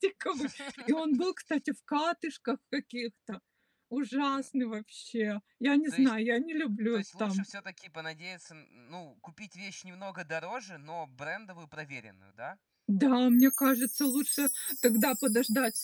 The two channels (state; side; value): identical; both; correlation 1.00